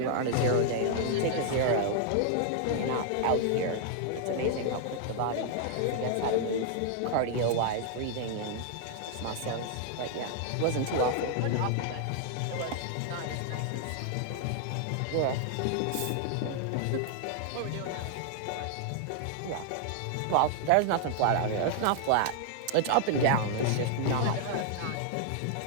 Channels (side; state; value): both; different; correlation 0.00